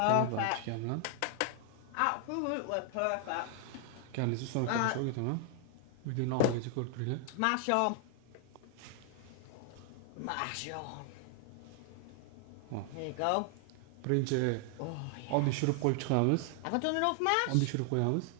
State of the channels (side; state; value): both; different; correlation 0.00